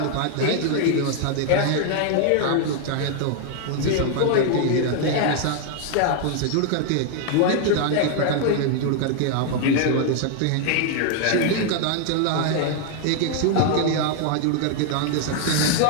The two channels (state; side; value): different; both; correlation 0.00